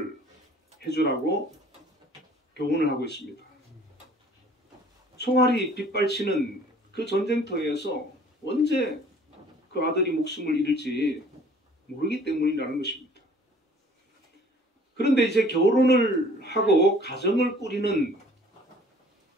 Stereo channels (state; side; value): normal; both; correlation 0.53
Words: 해주라고 교훈을 하고 있습니다. 총알이 빗발치는 그 전쟁터에서 언제 그 아들이 목숨을 잃을지 모르기 때문이라는 것입니다. 그런데 이제 결혼을 하고 가정을 꾸리는